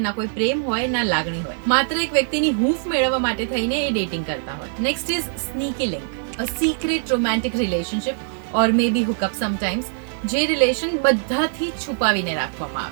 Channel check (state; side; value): silent; left; digital silence